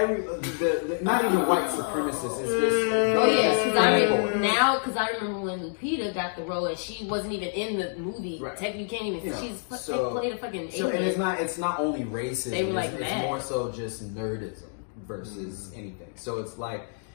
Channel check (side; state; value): right; silent; digital silence